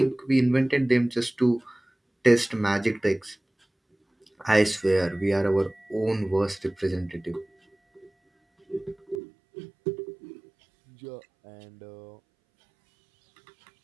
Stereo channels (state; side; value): drops out; left; at 9.2 s